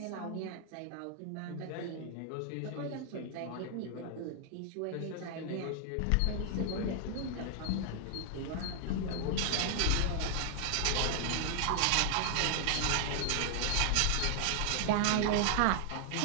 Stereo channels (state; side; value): different; both; correlation 0.00